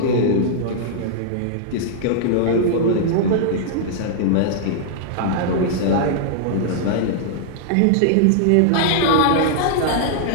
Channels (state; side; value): different; both; correlation -0.01